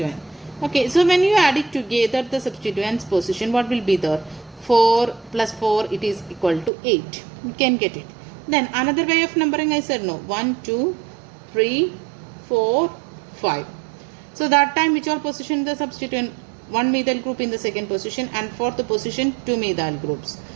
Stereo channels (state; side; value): drops out; left; at 6.7 s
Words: Okay, so when you add it together, the substituents position, what will be there? 4 plus 4, it is equal to 8. You can get it. Then another way of numbering, I said no. 1, 2, 3, 4, 5. So that time which all position the substituent? 1 methyl group in the second position, and fourth position 2 methyl groups.